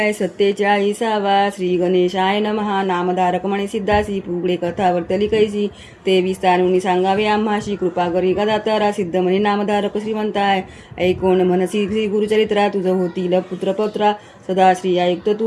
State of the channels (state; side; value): identical; both; correlation 1.00